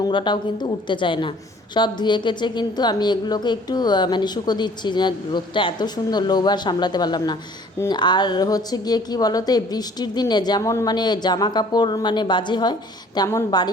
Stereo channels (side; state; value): both; normal; correlation 0.54